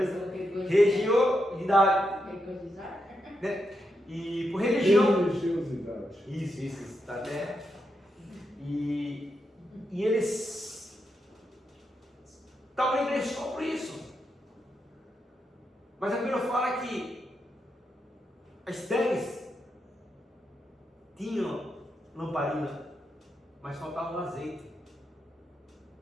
Religiosidade. Né? E por religião. Religiosidade. Isso, está até. E eles estavam na igreja só por isso. Mas a Bíblia fala que as 10 tinham lamparina, mas faltava um azeite.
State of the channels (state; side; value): normal; both; correlation 0.84